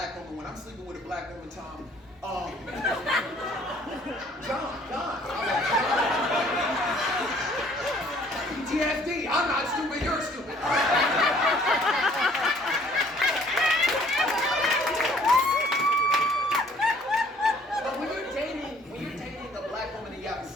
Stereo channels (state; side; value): normal; both; correlation 0.58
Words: woman, when I'm sleeping with a black woman, Tom, John. PTSD. I'm not stupid. You're stupid. But when you're dating a black woman and you have